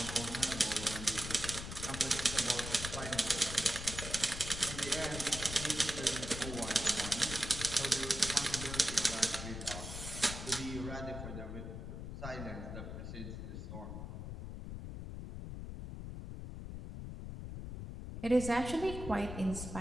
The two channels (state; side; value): noise; left; rumble, 7 dB below the sound